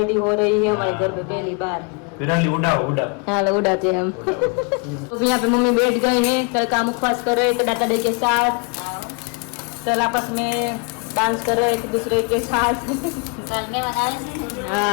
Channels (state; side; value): quieter; right; 33.8 dB